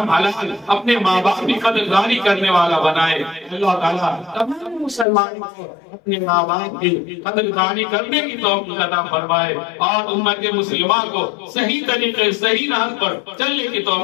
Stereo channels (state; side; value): drops out; right; at 5.1 s